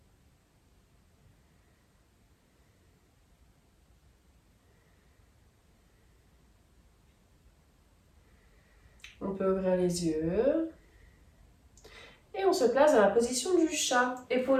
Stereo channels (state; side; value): identical; both; correlation 1.00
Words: On peut ouvrir les yeux. Et on se place dans la position du chat.